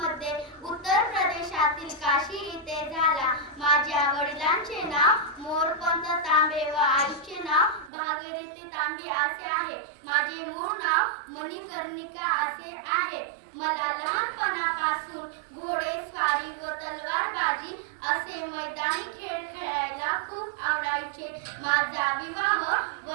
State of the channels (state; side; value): drops out; left; at 7.9 s